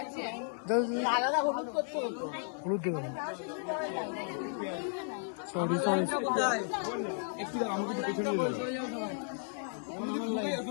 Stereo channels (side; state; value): right; silent; 55 dB below the other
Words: আলাদা হলুদ করতে হতো। একটু দাঁড়াও, আমাকে একটু পেছনে নিয়ে যাও।